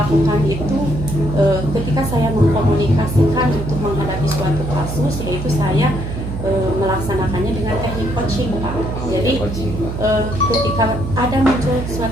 lakukan itu ketika saya mengkomunikasikan untuk menghadapi suatu kasus, yaitu saya melaksanakannya dengan teknik coaching Pak. Jadi ketika ada muncul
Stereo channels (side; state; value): right; noise; hum, 5 dB below the sound